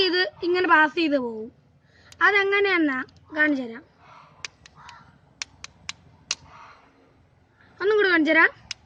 ഇങ്ങനെ പാസ് ചെയ്ത് പോകും. അതെങ്ങനെയെന്നാ കാണിച്ചു തരാം. ഒന്നും കൂടെ കാണിച്ചു തരാം.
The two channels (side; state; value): both; identical; correlation 1.00